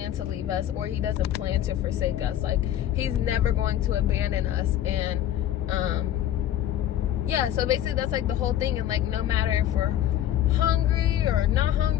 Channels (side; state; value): right; quieter; 11.8 dB